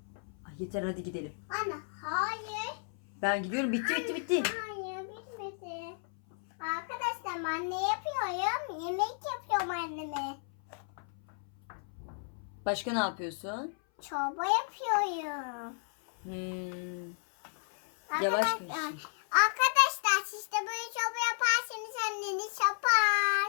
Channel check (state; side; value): silent; right; 56 dB below the other